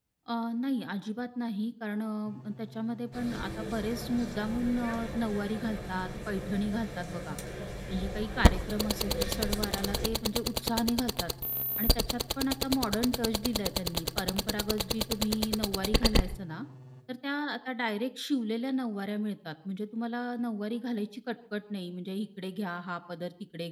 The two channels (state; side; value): identical; both; correlation 1.00